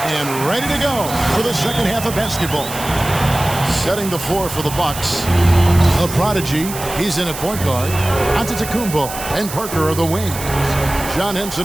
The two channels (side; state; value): right; noise; hiss, 10 dB below the sound